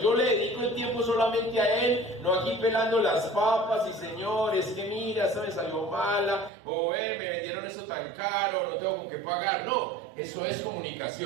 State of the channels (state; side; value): drops out; left; at 6.5 s